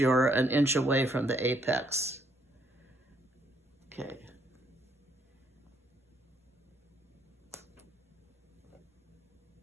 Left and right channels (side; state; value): both; normal; correlation 0.70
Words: an inch away from the apex. Okay.